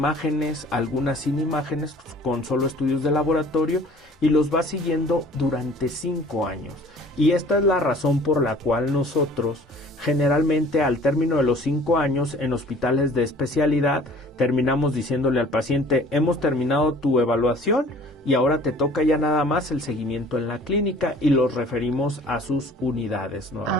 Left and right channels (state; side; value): normal; both; correlation 0.50